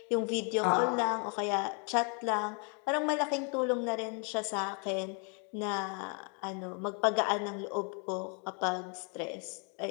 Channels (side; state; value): right; quieter; 38.8 dB